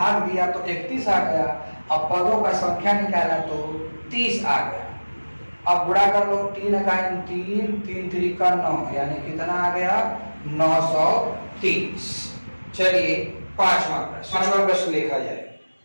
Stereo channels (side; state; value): both; inverted; correlation -1.00